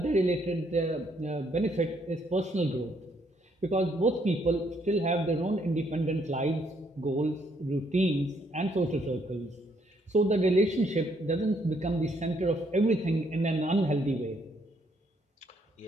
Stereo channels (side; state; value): both; normal; correlation 0.70